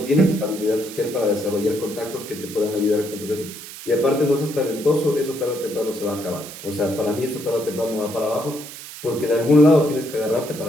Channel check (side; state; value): right; noise; hiss, 13 dB below the sound